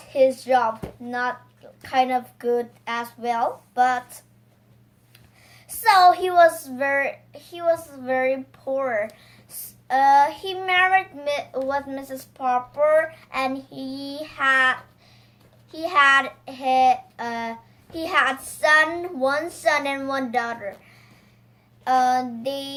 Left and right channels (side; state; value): both; identical; correlation 1.00